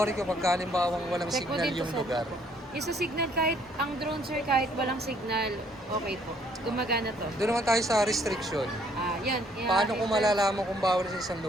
ko pag halimbawang walang Check mo signal dito yung sa- lugar. Yung sa signal, kahit ang drone sir, kahit walang signal, okay po. Gumagana to. Doon naman tayo sa restriction. Yan. Paano kung malalaman kung bawal sa isang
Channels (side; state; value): both; normal; correlation 0.64